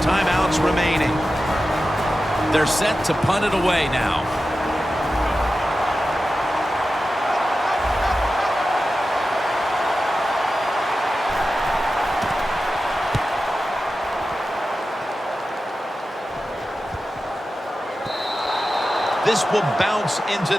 timeouts remaining. They're set to punt it away now. This will bounce into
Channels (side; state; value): both; normal; correlation 0.93